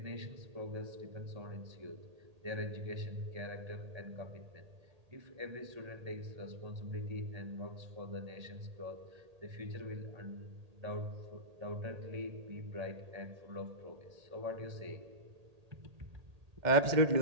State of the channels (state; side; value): late; left; 1.8 ms